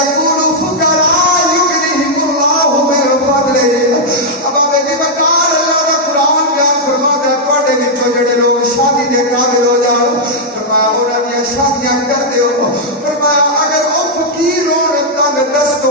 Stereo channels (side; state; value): both; normal; correlation -0.04